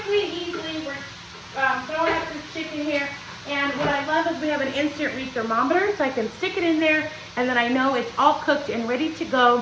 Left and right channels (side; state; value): both; identical; correlation 1.00